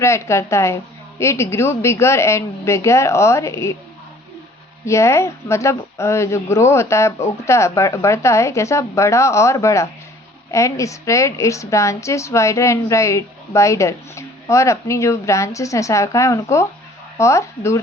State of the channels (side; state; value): both; normal; correlation 0.54